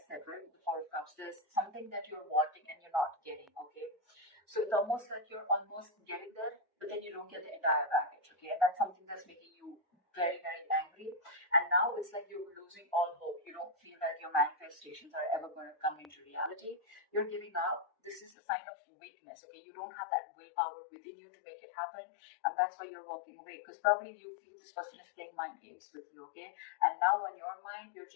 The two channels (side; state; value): right; drops out; at 18.3 s